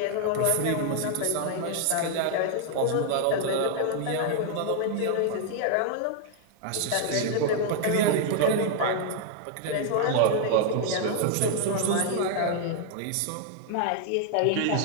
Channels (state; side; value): different; both; correlation 0.00